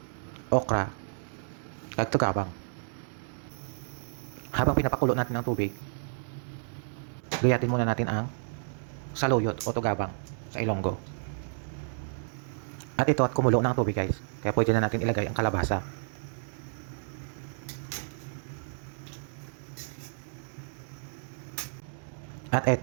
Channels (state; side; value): silent; left; digital silence